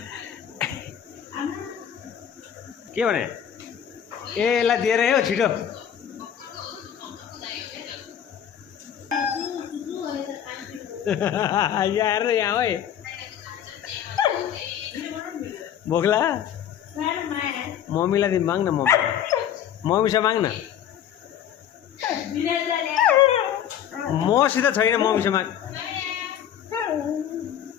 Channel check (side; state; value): right; quieter; 9.7 dB